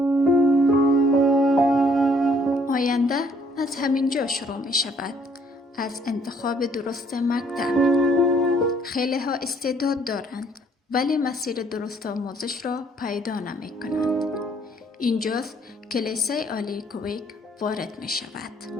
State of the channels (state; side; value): normal; both; correlation 0.63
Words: آینده از همین جا شروع می شود، از انتخاب درست مکتب. خیلی ها استعداد دارند ولی مسیر درست آموزش را پیدا نمی کنند. اینجاست که لیسه عالی کویک وارد می شود.